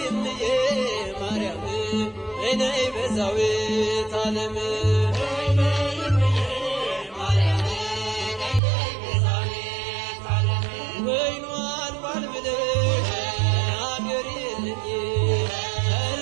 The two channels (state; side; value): drops out; left; at 8.6 s